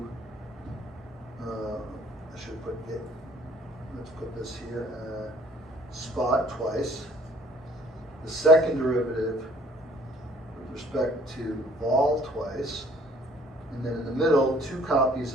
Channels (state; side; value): normal; both; correlation 0.57